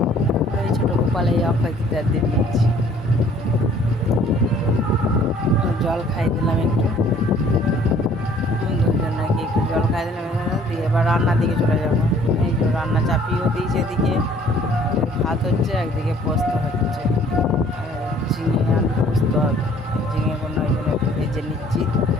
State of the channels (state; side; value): normal; both; correlation 0.56